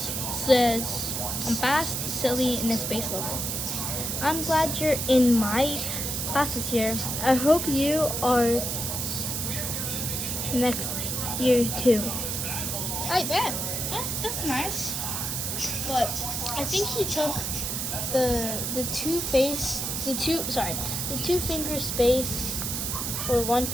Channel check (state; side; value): noise; right; hiss, 2 dB below the sound